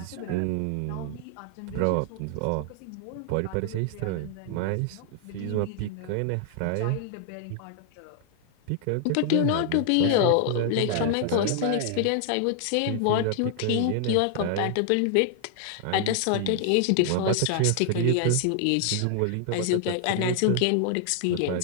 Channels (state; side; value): different; both; correlation 0.00